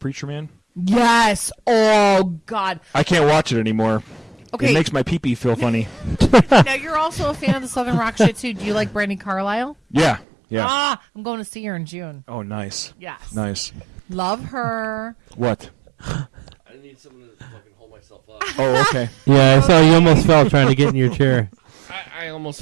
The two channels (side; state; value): left; drops out; at 10.2 s